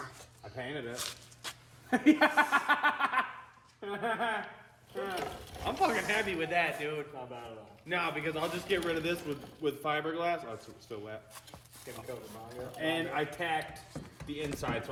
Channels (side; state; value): both; identical; correlation 1.00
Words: I painted it. I'm fucking happy with that, dude. Not bad at all. No, because I'll just get rid of this with fiberglass. Oh, it's still wet. Getting covered by it. And I tacked the inside, so